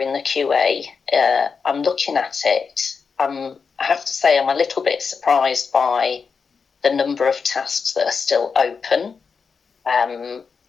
the QA. I'm looking at it. I have to say I'm a little bit surprised by the number of tasks that are still open. And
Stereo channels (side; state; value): right; quieter; 5.5 dB